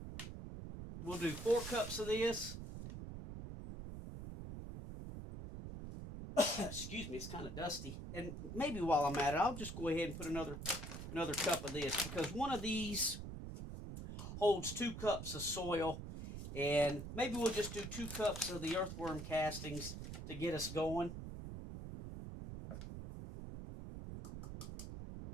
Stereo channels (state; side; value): noise; right; rumble, 8 dB below the sound